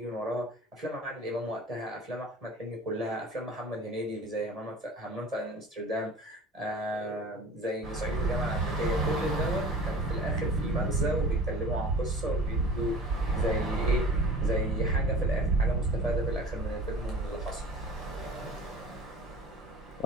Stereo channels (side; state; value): both; normal; correlation 0.41